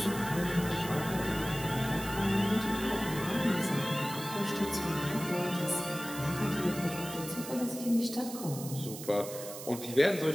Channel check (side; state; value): right; noise; hiss, 11 dB below the sound